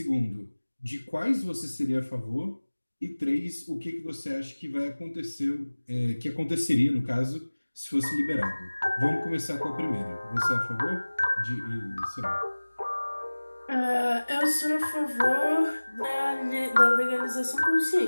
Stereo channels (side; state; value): both; inverted; correlation -1.00